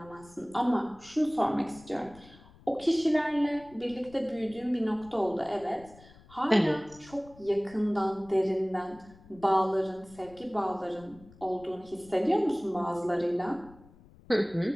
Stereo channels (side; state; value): left; noise; rumble, 23 dB below the sound